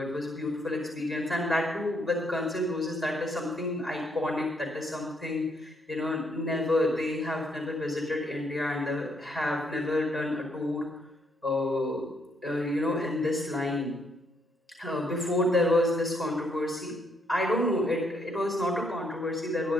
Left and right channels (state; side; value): normal; both; correlation 0.72